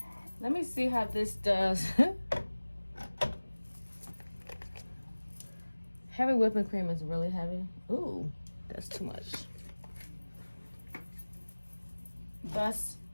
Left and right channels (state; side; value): inverted; both; correlation -1.00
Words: Let me see how this does. Heavy whipping cream is really heavy. Ooh, that's too much. That's